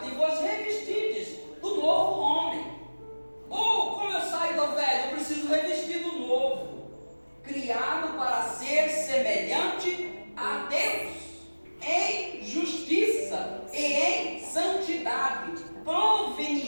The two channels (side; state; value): both; inverted; correlation -1.00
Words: e vos revestides do novo homem. Ou, como eu saio do velho, eu preciso revestir do novo, criado para ser semelhante a Deus, em justiça e em santidade,